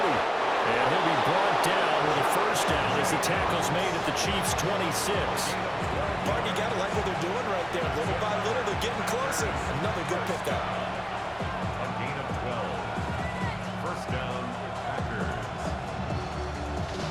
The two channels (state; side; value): identical; both; correlation 1.00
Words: And he'll be brought down with a first down as the tackle's made at the Chiefs' 26. Mark, you got to like what they're doing right there. Little by little, they're getting closer. Another good pickup. A gain of 12. First down, Packers.